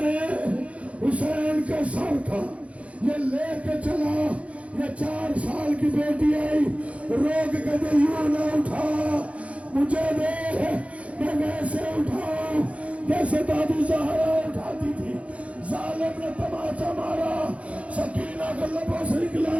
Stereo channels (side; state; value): left; late; 0.064 ms